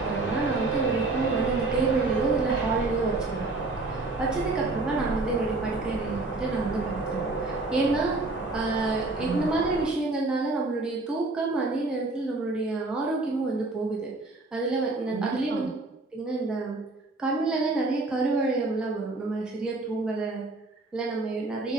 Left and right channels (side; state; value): left; quieter; 3.2 dB